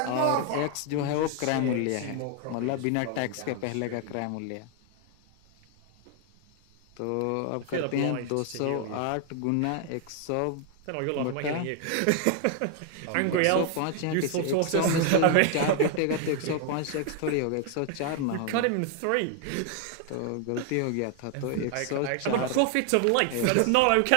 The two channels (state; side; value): different; both; correlation 0.00